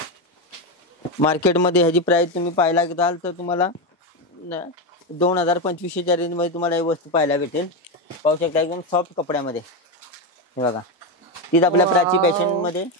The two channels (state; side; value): normal; both; correlation 0.11